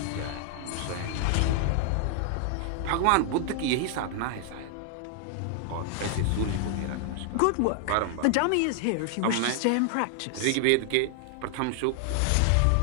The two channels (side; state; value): both; different; correlation 0.00